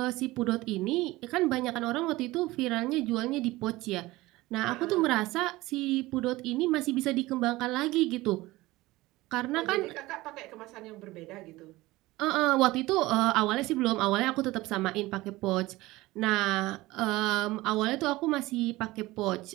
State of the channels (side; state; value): left; quieter; 19.3 dB